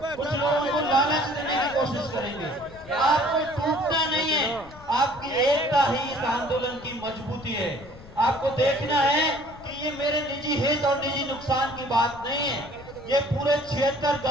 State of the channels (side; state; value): left; noise; rumble, 19 dB below the sound